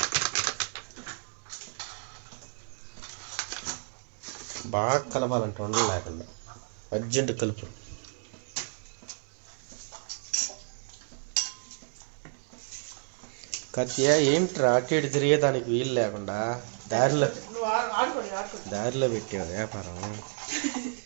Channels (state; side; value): silent; left; digital silence